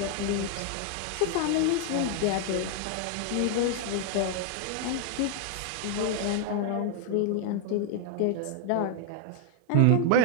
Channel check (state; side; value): different; both; correlation 0.00